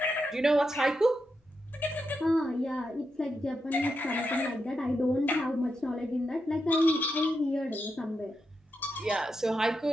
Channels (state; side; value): normal; both; correlation 0.85